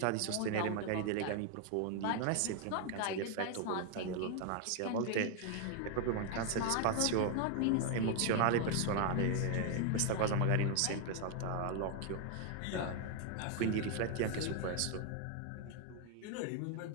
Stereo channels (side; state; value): both; different; correlation 0.01